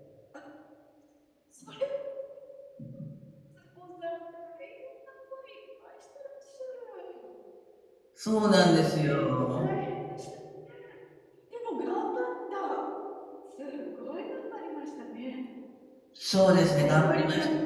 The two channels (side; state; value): both; identical; correlation 1.00